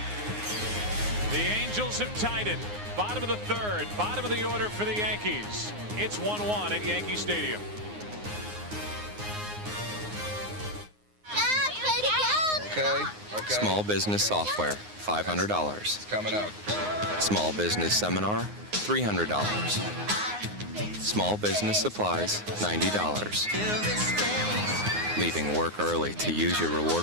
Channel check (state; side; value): late; left; 9.6 ms